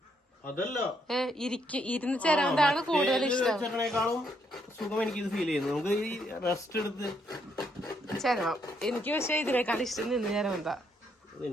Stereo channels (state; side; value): normal; both; correlation 0.74